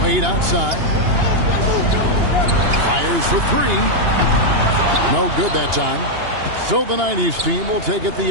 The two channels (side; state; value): left; late; 2.8 ms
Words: Wade outside. Fires for three. No good that time. So the 90s team will take it the